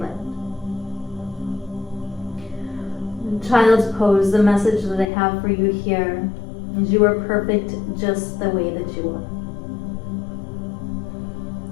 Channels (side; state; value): right; drops out; at 5.1 s